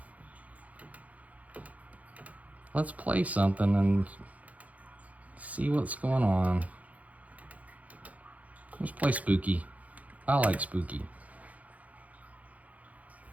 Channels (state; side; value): late; left; 0.071 ms